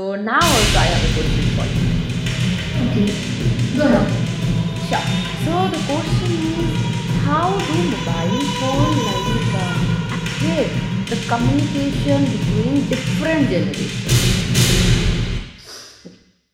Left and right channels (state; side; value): identical; both; correlation 1.00